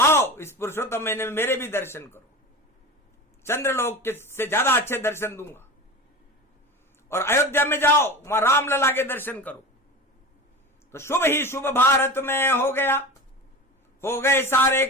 इस पुरुषोत्तम महीने में मेरे भी दर्शन करो, चंद्रलोक के से ज्यादा अच्छे दर्शन दूंगा। और अयोध्या में जाओ, वहां रामलला के दर्शन करो। तो शुभ ही शुभ भारत में हो गया, हो गए सारे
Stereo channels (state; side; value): normal; both; correlation 0.30